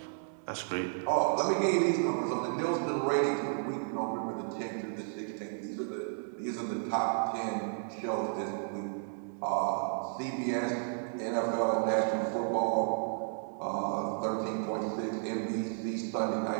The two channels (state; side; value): silent; left; 56 dB below the other